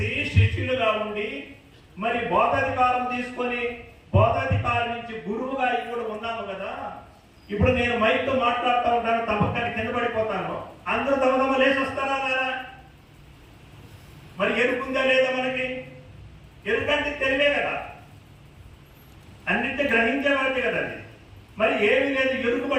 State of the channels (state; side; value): identical; both; correlation 1.00